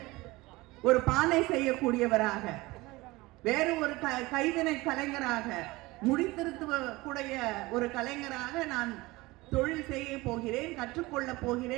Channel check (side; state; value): left; quieter; 21.3 dB